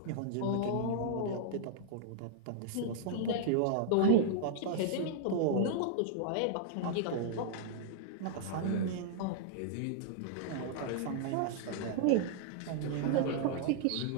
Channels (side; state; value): both; different; correlation -0.01